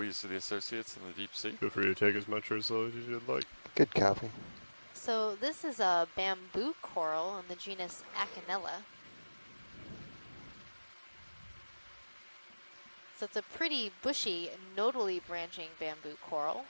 the associates in the deep sea. Feel free to take as much or as little as you'd like. Good copy. So this is a bamboo coral in the genus Acanella. So it's a pretty bushy, nodally branching bamboo coral.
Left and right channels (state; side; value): inverted; both; correlation -1.00